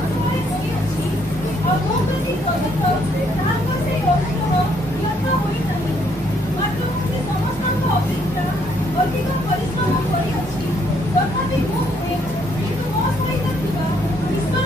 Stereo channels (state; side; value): normal; both; correlation 0.69